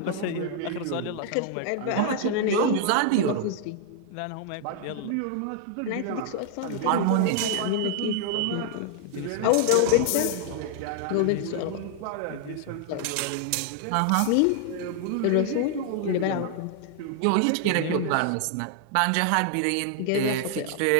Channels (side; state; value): both; different; correlation 0.00